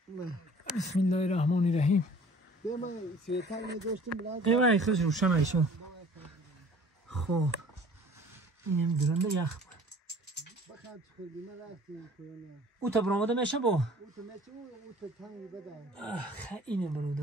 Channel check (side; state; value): both; normal; correlation 0.50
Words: بسم الله الرحمن الرحیم من سویتر نداشتم بلاد ایوای خیلی روشن ایشو خب اینم درنده یخ بخاطر خودی من رفتم کنه او تا برآمده میشه با او تو میشه او تو تنگ بده اینه